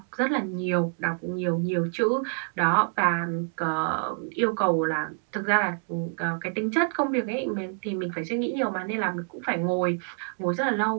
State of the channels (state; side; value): silent; left; 60 dB below the other